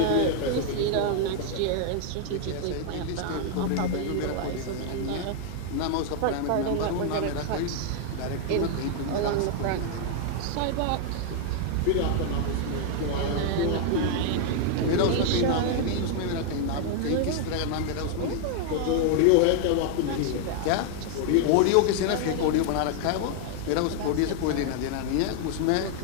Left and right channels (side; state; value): both; different; correlation 0.00